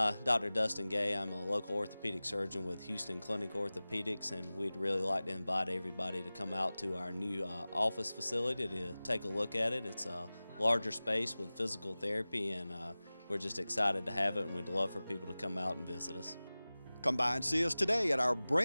Dr. Dustin Gay. I'm a local orthopedic surgeon with Houston Clinic Orthopedics, and we'd really like to invite everybody to come out to our new office facility to take a look at it. It's a larger space with physical therapy, and we're just excited to have it, and we'd love for people to come out and visit us. Come by and see us today at our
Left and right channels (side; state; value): both; inverted; correlation -0.98